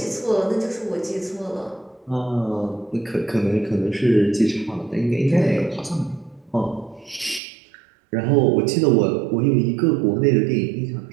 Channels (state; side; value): drops out; left; at 7.4 s